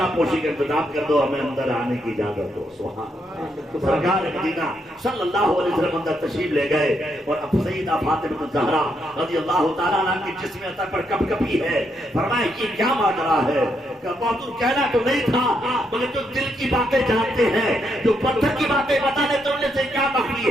پوشی کا انتظام کر دو ہمیں اندر آنے کی اجازت دو. سبحان اللہ. سرکار مدینہ صلی اللہ علیہ وسلم اندر تشریف لے گئے اور اب سیدہ فاطمہ الزہرا رضی اللہ تعالیٰ عنہ کی جسم عطا پر کپ کپی ہے. فرمایا یہ کیا ماجرا ہے کہ بہادر کہنا تو نہیں تھا مگر جو دل کی باتیں جانتے ہیں جو پتھر کی باتیں بتانے تو انہیں سے کیا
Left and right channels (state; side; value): normal; both; correlation 0.78